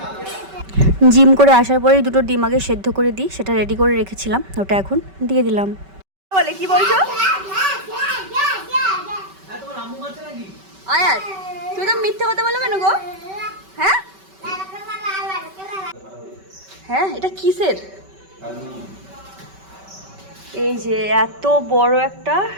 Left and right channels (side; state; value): left; late; 5.2 ms